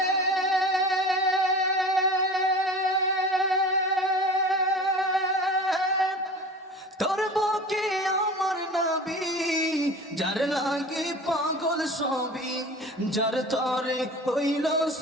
তোর বুকে আমার নবী, যার লাগে পাগল সবই, যার তরে হইল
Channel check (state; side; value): normal; both; correlation 0.37